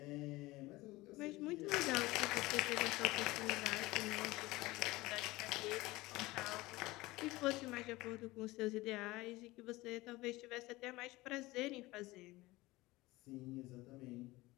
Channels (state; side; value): quieter; right; 20.0 dB